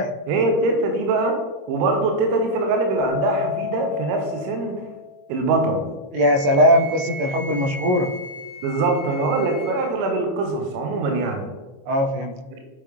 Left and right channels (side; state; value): left; late; 22 ms